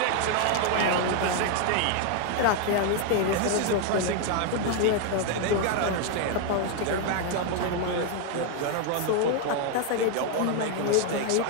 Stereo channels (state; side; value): different; both; correlation 0.01